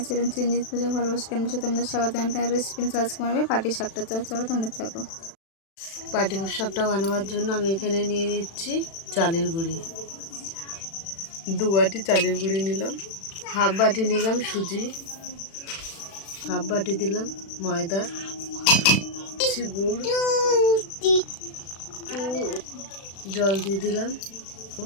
channel Chiranjit পূজা ভালোবাসা কেন বসে তোমাদের স্বাগত জানাই। রেসিপি সার্চ করবে পাটি শাকটা, চলো তোমরা থাকো। পাটি শাকটা বানাবার জন্য আমি এখানে নিয়ে নিচ্ছি চালের গুঁড়ি। 2 বাটি চালের গুঁড়ি নিলাম, হাফ বাটি নিলাম সুজি, হাফ বাটি দিলাম ময়দা, গুড়, জল দিয়ে দিলাম,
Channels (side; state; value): right; late; 36 ms